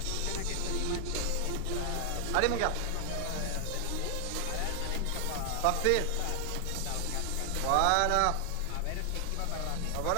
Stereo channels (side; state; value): both; different; correlation 0.00